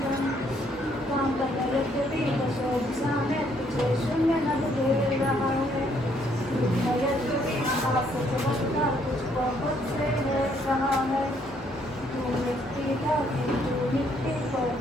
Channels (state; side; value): normal; both; correlation 0.68